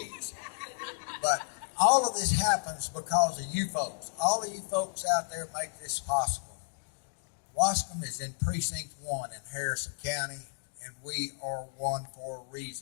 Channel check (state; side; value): silent; right; digital silence